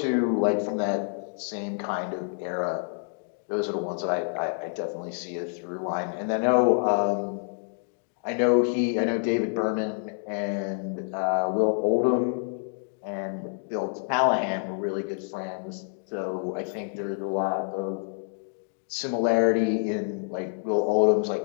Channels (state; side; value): silent; right; 60 dB below the other